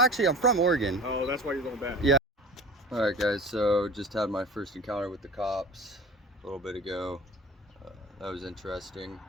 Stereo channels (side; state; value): both; normal; correlation 0.40